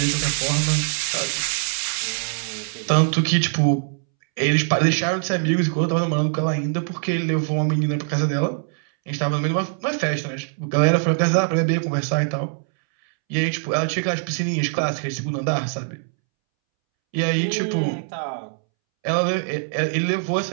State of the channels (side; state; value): left; silent; 64 dB below the other